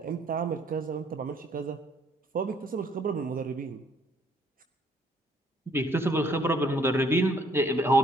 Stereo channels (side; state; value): both; normal; correlation 0.64